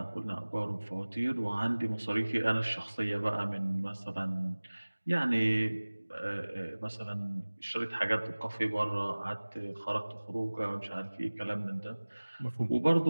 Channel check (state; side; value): inverted; both; correlation -1.00